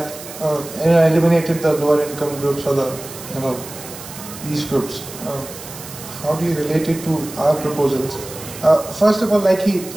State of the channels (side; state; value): right; noise; hiss, 14 dB below the sound